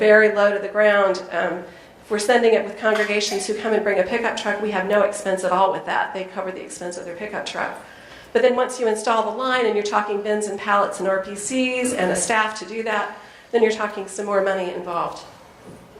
low to the ground. If we're sending it with congregations who come and bring a pickup truck, we have no expense at all with that. They cover the expense of their pickup truck. But then once you install the line and you're talking bins and pallets and RPCs and a staff to do that, then you're talking some more money involved.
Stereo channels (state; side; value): identical; both; correlation 1.00